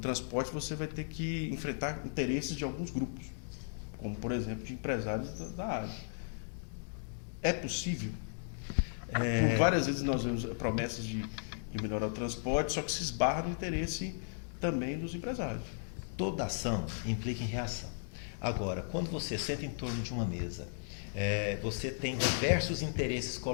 você vai ter que enfrentar interesses de alguns grupos, como por exemplo de empresários da área. É possível? Por várias vezes nós vemos promessas de melhorar o transporte, só que se esbarra no interesse também dos empresários. Toda ação implica em reação. Agora, quando você senta em torno de uma mesa, você tem diversos interesses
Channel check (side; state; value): right; silent; digital silence